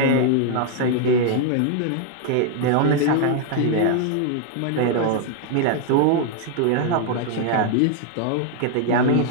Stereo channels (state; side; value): different; both; correlation 0.00